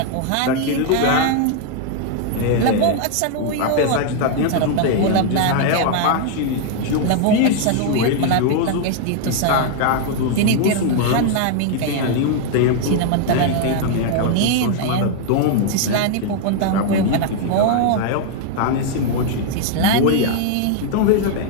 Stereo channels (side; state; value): both; different; correlation 0.00